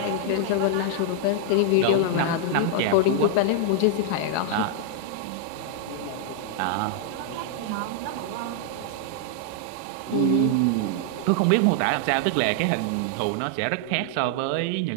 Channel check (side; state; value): both; different; correlation 0.00